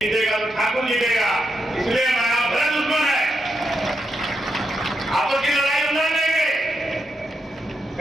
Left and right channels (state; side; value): normal; both; correlation 0.83